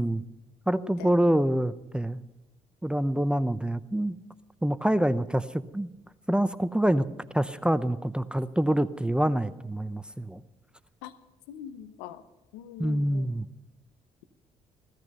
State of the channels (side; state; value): both; normal; correlation 0.97